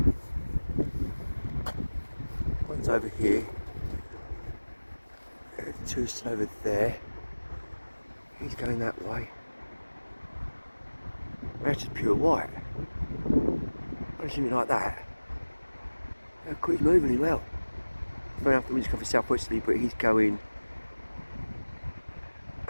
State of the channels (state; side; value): inverted; both; correlation -1.00